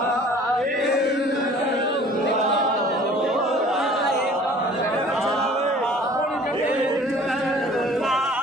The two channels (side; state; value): both; normal; correlation 0.50